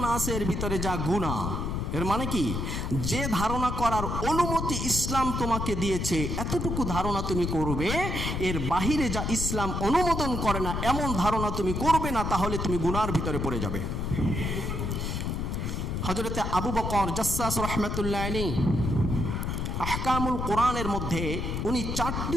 আছে এর ভিতরে যা গুনাহ। এর মানে কি, যে ধারণা করার অনুমতি ইসলাম তোমাকে দিয়েছে এতটুকু ধারণা তুমি করবে, এর বাহিরে যা ইসলাম অনুমোদন করে না এমন ধারণা তুমি করবে না, তাহলে তুমি গুনার ভিতরে পড়ে যাবে। হযরতে আবু বকর জাসসাস রাহমাতুল্লাহ আলাইহি আহকামুল কোরআনের মধ্যে উনি 4টি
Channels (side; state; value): left; noise; rumble, 2 dB below the sound